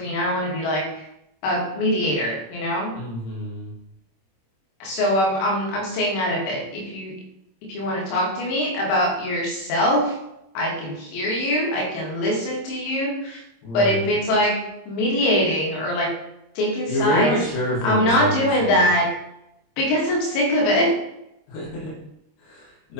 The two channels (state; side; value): late; right; 26 ms